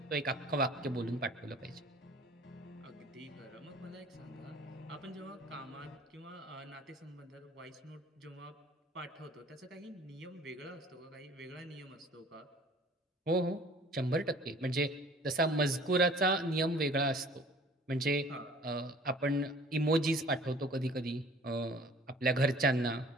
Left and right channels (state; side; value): normal; both; correlation 0.50